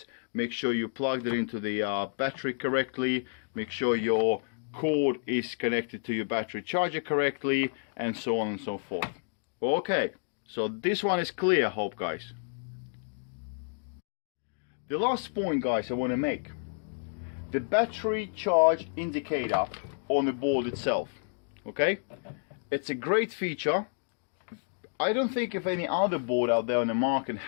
Make sure you plugged it into the battery correctly. Make sure your cord is connected to your battery charger correctly, and so on and so forth. Okay, so this one is clear, I hope, guys. The last point, guys, I want to make: the battery charge indicator on the board itself. Okay, it's a great feature. I don't think if any other board out there on the market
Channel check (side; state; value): right; silent; digital silence